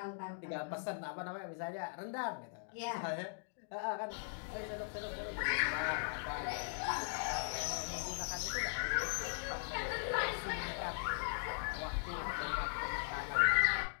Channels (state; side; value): silent; right; digital silence